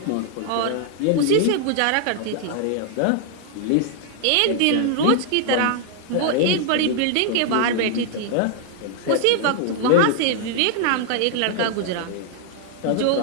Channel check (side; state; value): both; different; correlation 0.00